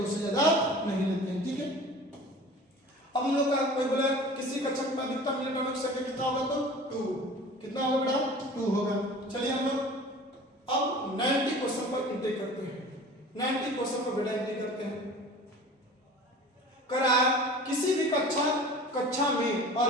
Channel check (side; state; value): both; normal; correlation 0.41